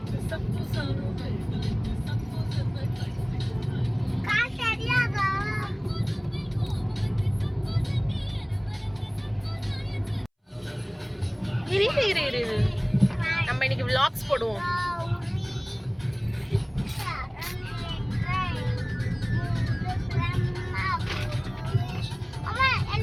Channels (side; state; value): both; identical; correlation 1.00